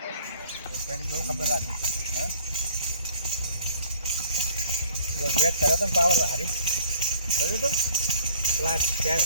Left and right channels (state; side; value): inverted; both; correlation -0.55